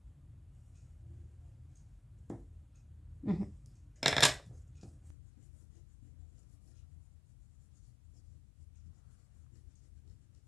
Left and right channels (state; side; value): drops out; right; at 5.2 s